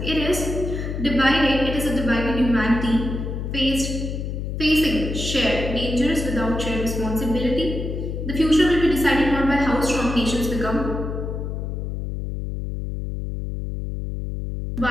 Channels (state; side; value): noise; left; hum, 4 dB below the sound